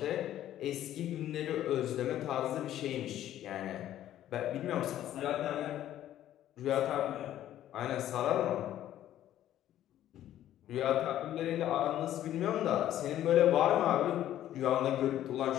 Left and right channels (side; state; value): right; quieter; 12.3 dB